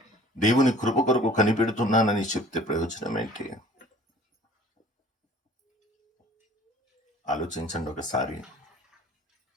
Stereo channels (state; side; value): normal; both; correlation 0.50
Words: దేవుని కృప కొరకు కనిపెడుతున్నానని చెప్తే ప్రయోజనం ఏంటి? ఆలోచించండి ఒకసారి.